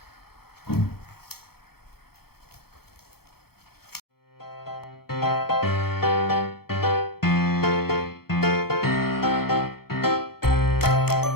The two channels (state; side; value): late; right; 0.95 ms